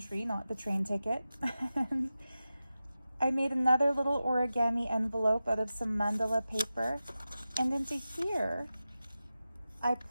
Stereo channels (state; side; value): inverted; both; correlation -0.93